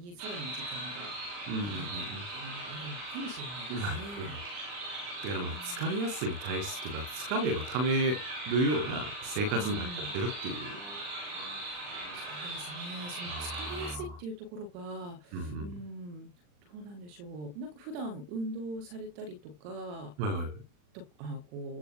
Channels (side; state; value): left; late; 40 ms